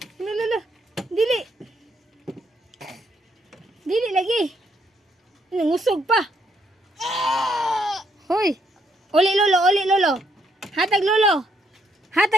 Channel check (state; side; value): normal; both; correlation 0.73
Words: Hala, hala. Dili. Dili lagi. Nangusog pa. Hoy. Uli lolo, uli lolo. Hatag lolo.